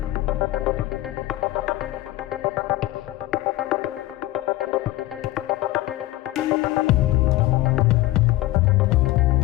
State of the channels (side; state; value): right; quieter; 17.0 dB